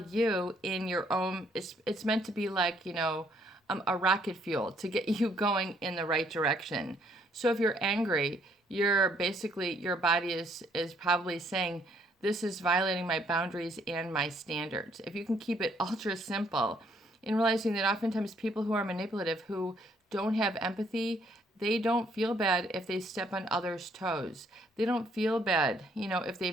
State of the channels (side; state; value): both; normal; correlation 0.67